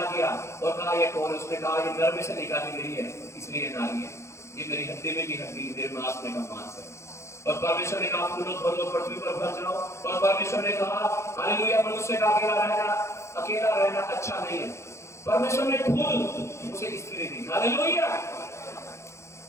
किया और कहा ये कौन है? उसने कहा ये नर में से निकाली गई है, इसलिए नारी है, ये मेरी हड्डी में की हड्डी, मेरे मांस में का मांस है। और परमेश्वर ने कहा फूलो फलो पृथ्वी पर भर जाओ। और परमेश्वर ने कहा हालेलुया, मनुष्य का अकेला रहना अच्छा नहीं है। परमेश्वर ने खुद उसे स्त्री दी। हालेलुया।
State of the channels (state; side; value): late; right; 0.14 ms